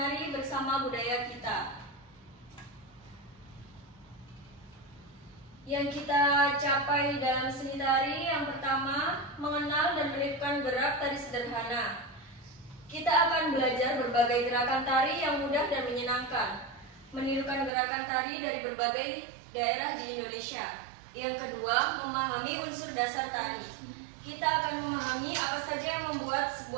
bersama budaya kita. Yang kita capai dalam seni tari yang pertama, mengenal dan menirukan gerak tari sederhana. Kita akan belajar berbagai gerakan tari yang mudah dan menyenangkan. Menirukan gerakan tari dari berbagai daerah di Indonesia. Yang kedua, memahami unsur dasar tari. Kita akan memahami apa saja yang membuat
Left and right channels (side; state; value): left; drops out; at 17.7 s